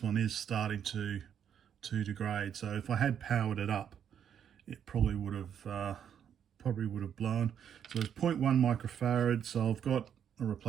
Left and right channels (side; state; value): left; quieter; 8.7 dB